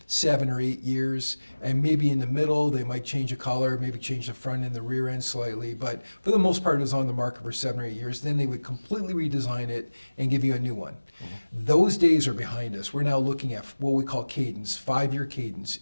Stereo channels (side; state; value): both; inverted; correlation -1.00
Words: 7 or 8 years, and maybe in the middle, they might change a color, maybe change the front and the rear end slightly, but for the most part, it was on the market for 7 or 8 years. Then they would completely redesign it and give you a new one. Those days are behind us. We're now looking at what we call cadence, 5-year cadence,